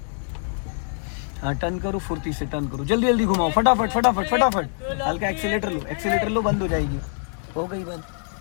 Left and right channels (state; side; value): silent; right; 55 dB below the other